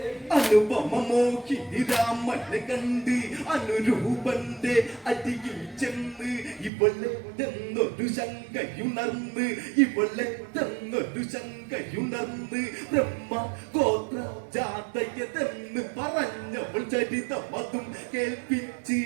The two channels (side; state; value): left; drops out; at 6.7 s